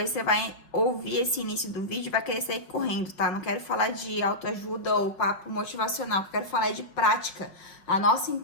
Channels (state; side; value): late; right; 5.4 ms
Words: você vai ouvir esse início do vídeo e vai querer sair correndo, tá? Não quero falar de autoajuda ou papo motivacional, eu quero falar de prática. A nossa